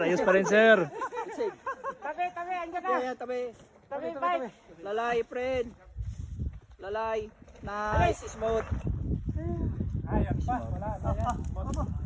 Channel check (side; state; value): both; identical; correlation 1.00